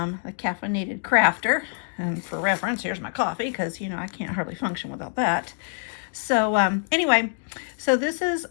Caffeinated Crafter. And for reference, here's my coffee because you know I can't hardly function without that. So anyway, so this is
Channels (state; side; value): silent; right; 56 dB below the other